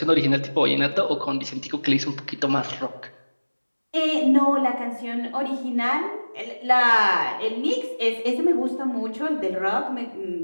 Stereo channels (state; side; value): inverted; both; correlation -1.00